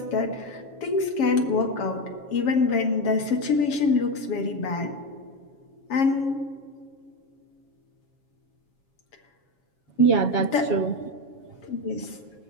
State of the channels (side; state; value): right; late; 7.3 ms